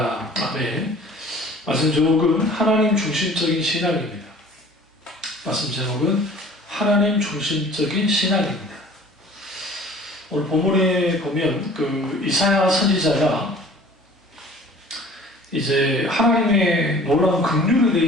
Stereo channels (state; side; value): normal; both; correlation 0.48